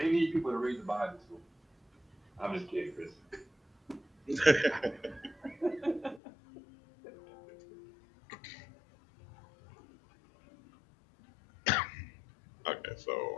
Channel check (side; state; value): right; drops out; at 6.2 s